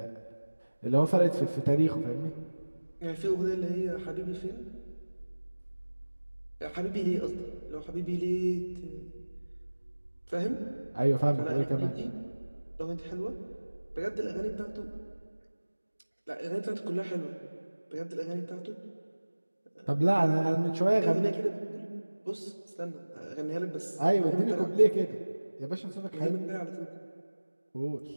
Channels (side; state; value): both; inverted; correlation -1.00